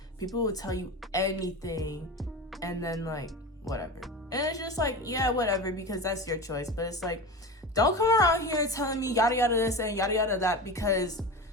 people will tell you anything and then like whatever, and it's just like, yeah, whatever, because that's your choice. But it's like, don't come around here telling me yada yada this and yada yada that, because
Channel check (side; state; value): both; normal; correlation 0.28